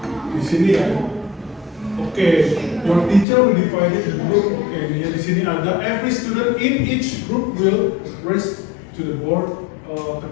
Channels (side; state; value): right; drops out; at 3.2 s